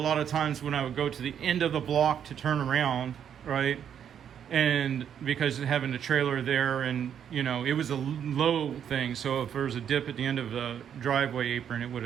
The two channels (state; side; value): quieter; left; 8.8 dB